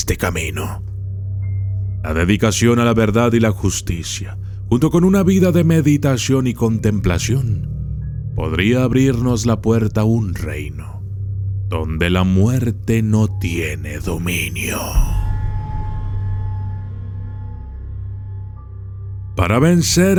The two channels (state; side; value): identical; both; correlation 1.00